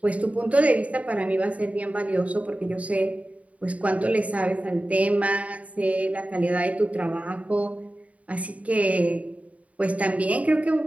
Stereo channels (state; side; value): late; left; 0.068 ms